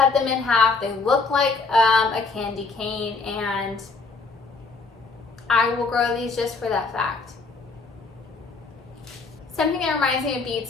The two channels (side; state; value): right; quieter; 4.1 dB